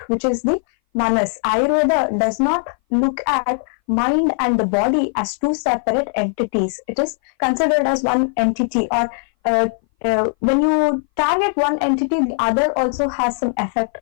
which is the manas. Ayurveda does not look at mind and the body as 2 separate entities. It is considered as one entity, or when you target one entity, the other also has some effect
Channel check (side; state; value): right; silent; 60 dB below the other